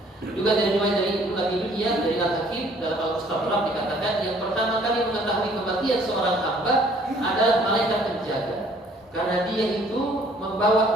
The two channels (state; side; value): normal; both; correlation 0.58